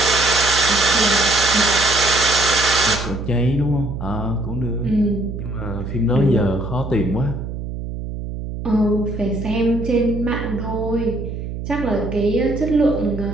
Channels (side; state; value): right; noise; hum, 7 dB below the sound